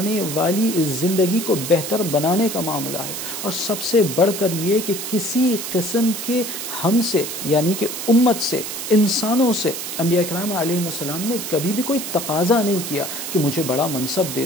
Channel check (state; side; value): noise; right; hiss, 6 dB below the sound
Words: والی زندگی کو بہتر بنانے کا معاملہ ہے، اور سب سے بڑھ کر یہ کہ کسی قسم کے ہم سے، یعنی کہ امت سے، انسانوں سے انبیاء کرام علیہ السلام نے کبھی بھی کوئی تقاضا نہیں کیا کہ مجھے بڑا منصب